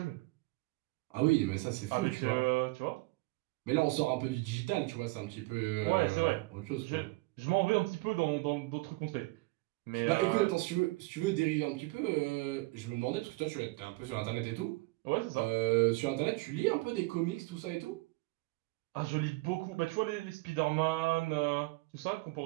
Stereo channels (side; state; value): left; quieter; 23.1 dB